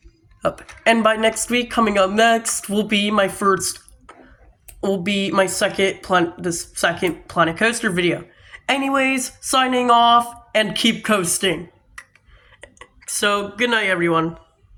And by next week, coming up next will be my second Planet Coaster video. Anyways, signing off and keep coasting. So, good night everyone.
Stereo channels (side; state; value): both; identical; correlation 1.00